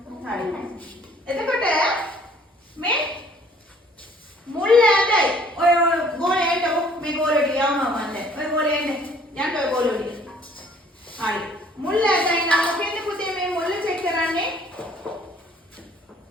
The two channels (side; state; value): both; normal; correlation 0.58